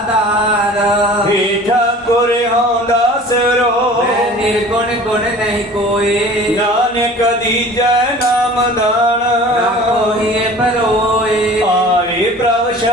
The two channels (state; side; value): normal; both; correlation 0.44